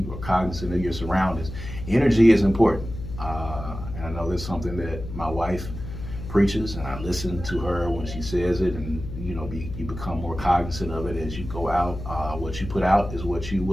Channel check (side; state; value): left; noise; hum, 9 dB below the sound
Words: are cognizant of your surroundings. Energy is important. And I know that's something that my wife preaches, and I listen to her when she says it, and you become more cognizant of it as you go out. What you put out is what you